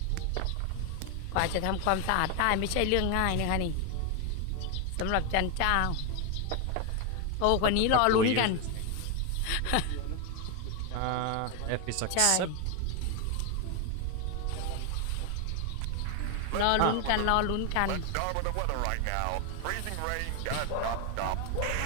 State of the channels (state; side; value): different; both; correlation 0.01